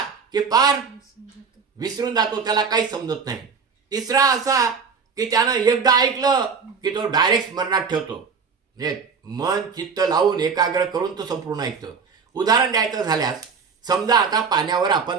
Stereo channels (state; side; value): quieter; left; 5.7 dB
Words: की पार विसरून जातो, त्याला काही समजत नाही. तिसरा असा की त्यानं एकदा ऐकलं की तो डायरेक्ट स्मरणात ठेवतो, म्हणजे मन चित्त लावून एकाग्र करून तो संपूर्ण ऐकतो. उदाहरण द्यायचं झाल्यास, समजा आता पाण्यावर